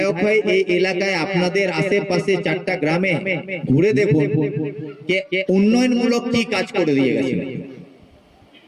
হয়ে এই এলাকায় আপনাদের আশেপাশে 4টা গ্রামে ঘুরে দেখুন উন্নয়নমূলক কি কাজ করে দিয়ে গেছেন।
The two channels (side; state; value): both; identical; correlation 1.00